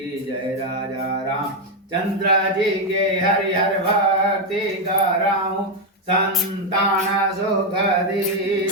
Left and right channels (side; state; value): both; normal; correlation 0.04